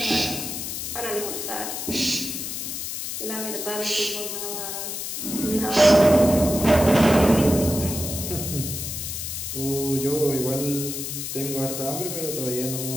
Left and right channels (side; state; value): left; noise; hiss, 5 dB below the sound